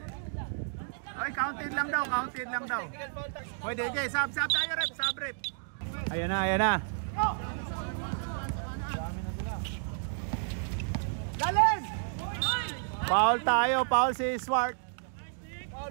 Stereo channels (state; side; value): silent; left; digital silence